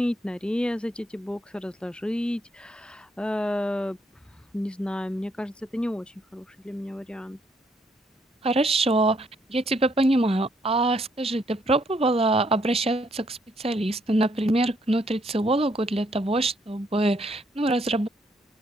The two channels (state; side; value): normal; both; correlation 0.71